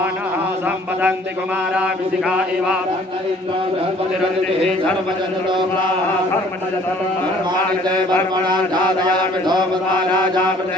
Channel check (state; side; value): normal; both; correlation 0.56